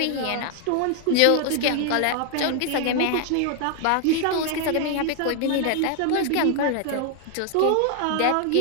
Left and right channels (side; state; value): both; different; correlation 0.00